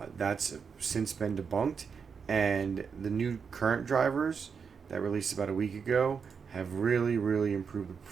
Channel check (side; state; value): left; quieter; 6.0 dB